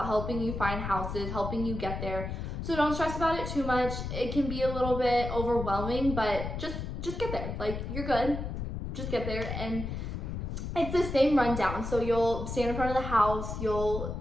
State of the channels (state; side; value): noise; left; rumble, 5 dB below the sound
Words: helping you find houses, helping you get there. So don't stress about it too much. It can be a little bit overwhelming, but just get there. Like, you're good. Just get there. And it's the same rundown. So you'll stand in front of the house. They'll